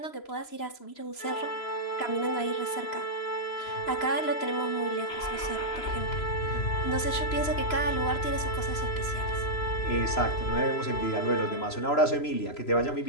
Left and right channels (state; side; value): late; right; 2.9 ms